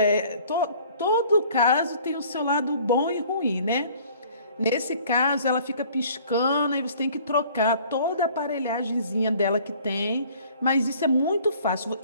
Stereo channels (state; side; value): inverted; both; correlation -0.53